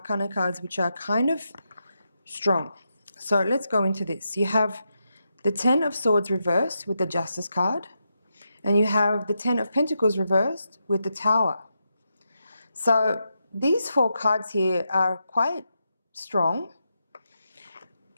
cards, which are kind of strong. So let's go into this. You have the Ten of Swords reversed with the Justice card. And you have the Ten of Pentacles reversed with the Tower. So these four cards here are quite strong.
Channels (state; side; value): inverted; both; correlation -0.85